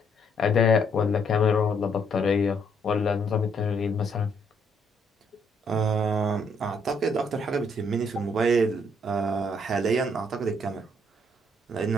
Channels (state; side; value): normal; both; correlation 0.70